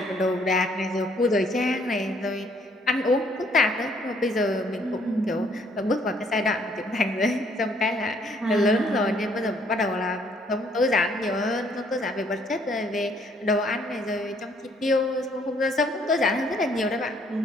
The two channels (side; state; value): both; normal; correlation 0.65